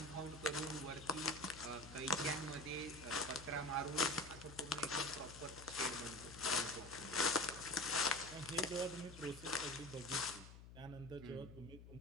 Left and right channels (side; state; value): left; noise; hum, 15 dB below the sound